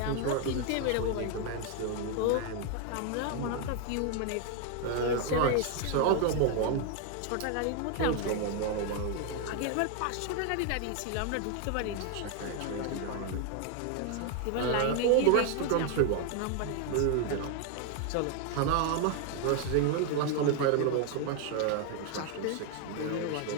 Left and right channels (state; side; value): different; both; correlation 0.01